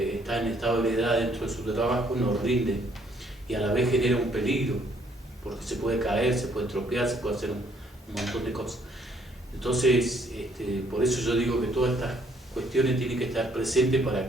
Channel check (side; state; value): both; normal; correlation 0.66